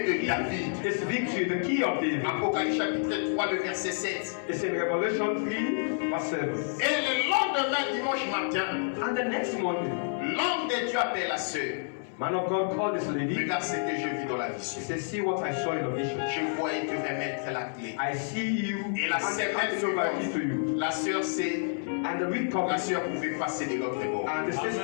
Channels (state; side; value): silent; right; 58 dB below the other